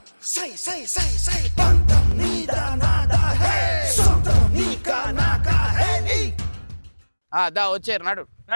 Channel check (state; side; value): inverted; both; correlation -1.00